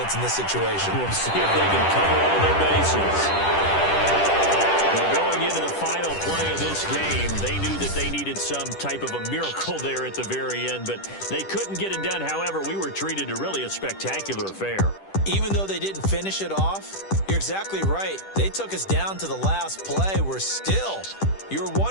in this situation. We'll see if they can cover all their bases. Well, going into the final play of this game, they knew that they needed some type of a miracle there at the very end, but they couldn't get it done. However, we were treated to really a spectacular affair. Even though they didn't finish it off, you're exactly right. They took us down to the last play. We're still, you're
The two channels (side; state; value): right; late; 10 ms